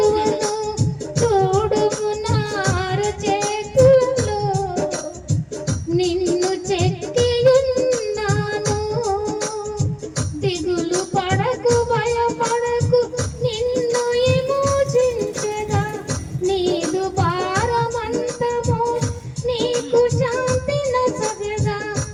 చూడుము నా అరచేతులలో నిన్ను చెక్కి ఉన్నాను. దిగులు పడకు భయపడకు, నిన్ను విమోచించెదా. నీదు భారమంతము నీకు శాంతి నొసగెదా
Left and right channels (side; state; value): both; identical; correlation 1.00